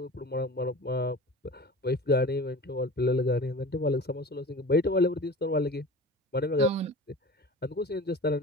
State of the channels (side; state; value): both; normal; correlation 0.36